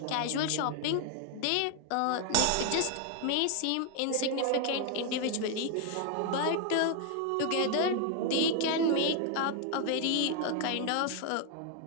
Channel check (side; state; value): both; different; correlation 0.00